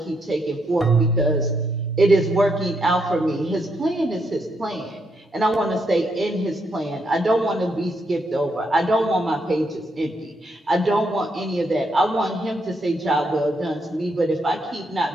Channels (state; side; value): normal; both; correlation 0.77